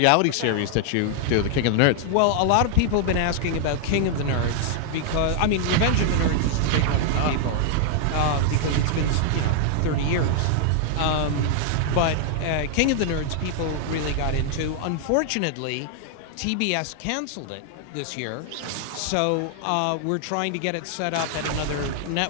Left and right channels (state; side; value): different; both; correlation 0.00